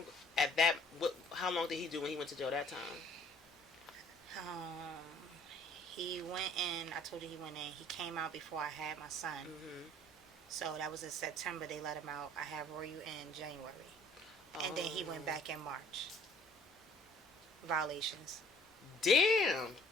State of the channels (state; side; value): normal; both; correlation 0.56